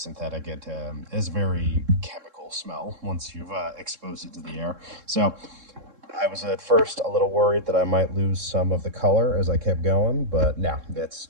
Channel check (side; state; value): left; late; 3.7 ms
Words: It is very chemical smell once you've exposed it to the air. So I was at first a little worried that I might lose some of the color as I kept going, but no, it's